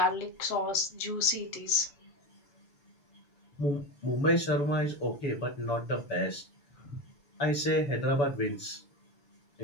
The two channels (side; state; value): right; late; 7.1 ms